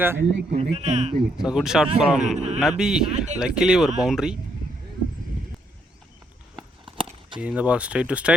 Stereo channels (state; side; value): normal; both; correlation 0.73